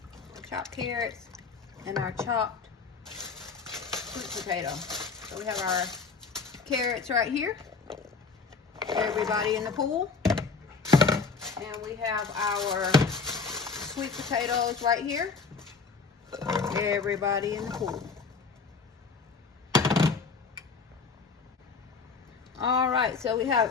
carrots and our chopped sweet potato. So we have our carrots right here. Everybody in the pool. And we have our sweet potatoes right here. Everybody in the pool. Alright, so we have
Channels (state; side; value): quieter; right; 4.8 dB